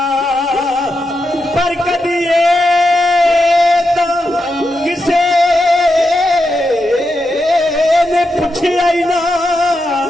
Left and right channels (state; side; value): normal; both; correlation 0.86